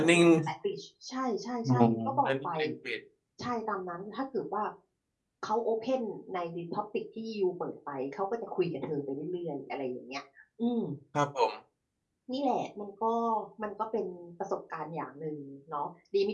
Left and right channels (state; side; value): identical; both; correlation 1.00